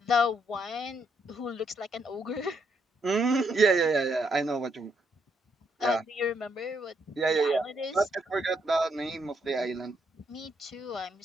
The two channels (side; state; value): both; normal; correlation 0.75